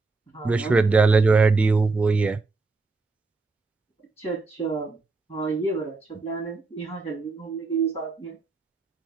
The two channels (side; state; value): left; quieter; 3.8 dB